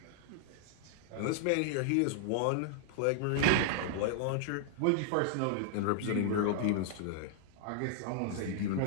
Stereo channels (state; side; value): different; both; correlation -0.01